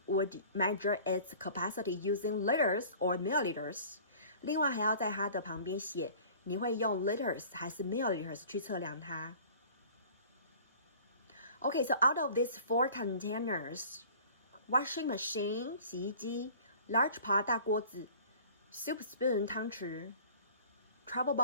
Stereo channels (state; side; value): inverted; both; correlation -0.46